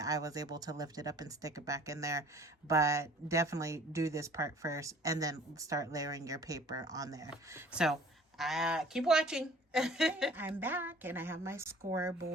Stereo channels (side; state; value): both; normal; correlation 0.51